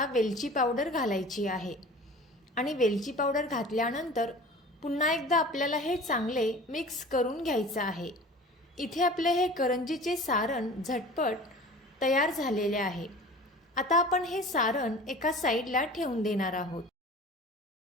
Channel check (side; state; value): both; normal; correlation 0.41